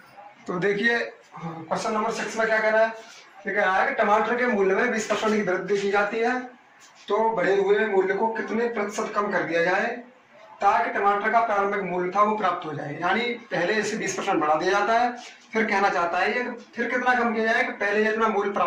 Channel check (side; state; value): both; identical; correlation 1.00